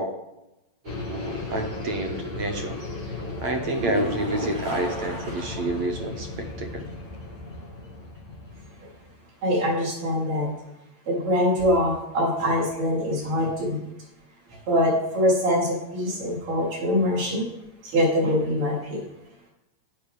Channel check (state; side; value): late; left; 8.8 ms